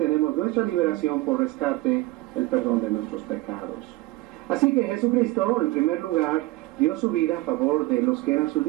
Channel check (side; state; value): left; quieter; 19.3 dB